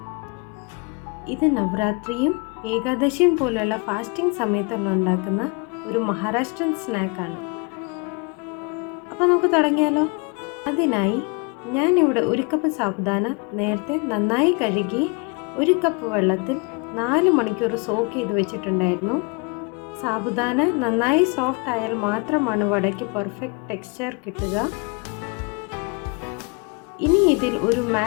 ഇത് നവരാത്രിയും ഏകാദശിയും പോലുള്ള ഫാസ്റ്റിംഗ് സമയത്തുള്ള ഉണ്ടാക്കുന്ന ഒരു മഹാരാഷ്ട്രൻ സ്നാക്കാണ്. അപ്പോൾ നമുക്ക് തുടങ്ങിയാലോ? അതിനായി ഞാനിവിടെ 1 കപ്പ് സാബുദാന നേരത്തെ നന്നായി കഴുകി 1 കപ്പ് വെള്ളത്തിൽ 4 മണിക്കൂർ സോക്ക് ചെയ്ത് വെച്ചിട്ടുണ്ടായിരുന്നു. സാബുദാന നന്നായി സോഫ്റ്റ് ആയാൽ മാത്രമാണ് വടയ്ക്ക് പെർഫെക്റ്റ് ടെക്സ്ചർ കിട്ടുക. ഇനി ഇതിൽ ഒരു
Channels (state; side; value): quieter; right; 30.8 dB